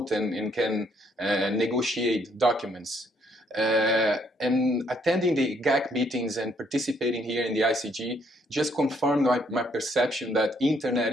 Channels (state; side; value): normal; both; correlation 0.69